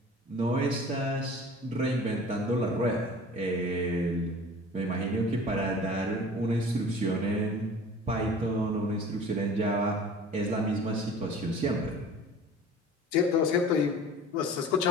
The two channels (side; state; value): both; normal; correlation 0.43